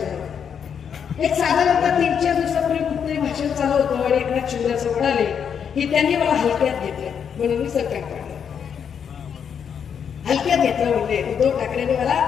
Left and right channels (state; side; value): quieter; right; 7.5 dB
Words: एक साधारणतः 3-4 दिवसापूर्वी कुठतरी भाषण चालू होतं आणि एकनाथ शिंदे असं म्हणाले की त्यांनी मला हलक्यात घेतलं म्हणून मी सरकार काढलं. हलक्यात घेतलं म्हणजे उद्धव ठाकरेंनी मला